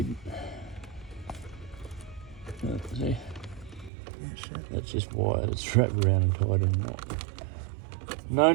See? Yeah, shit. That's just wired, it's wrapped around and tied in a knot. No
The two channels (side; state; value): left; drops out; at 3.9 s